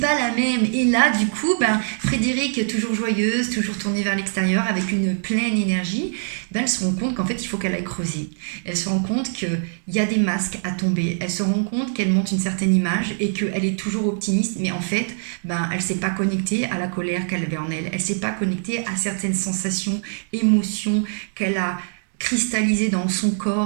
la même. Et là, du coup, ben, Frédéric, toujours joyeuse, toujours tournée vers l'extérieur, avec une pleine énergie, ben, elle se rend compte qu'en fait, il faut qu'elle aille creuser. Elle se rend compte qu'il y a des masques à tomber. Elle se rend compte qu'elle monte une certaine image et qu'elle est toujours optimiste, mais en fait, ben, elle ne s'est pas connectée à la colère qu'elle avait en elle. Elle ne s'est pas connectée à certaines sensations, émotions qu'elle a cristallisées dans son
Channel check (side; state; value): left; silent; digital silence